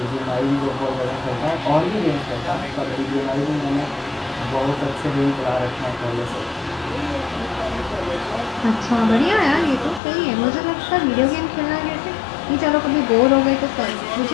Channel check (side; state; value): right; drops out; at 10.0 s